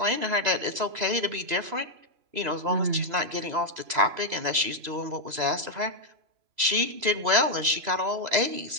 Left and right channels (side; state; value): left; late; 3.0 ms